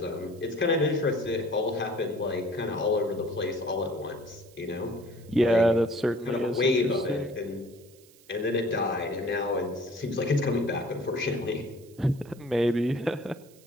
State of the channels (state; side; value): noise; right; hiss, 26 dB below the sound